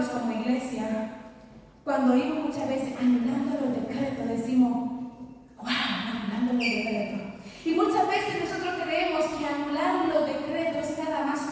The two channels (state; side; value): identical; both; correlation 1.00